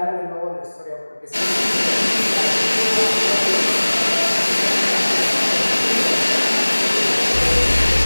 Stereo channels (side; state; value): both; inverted; correlation -1.00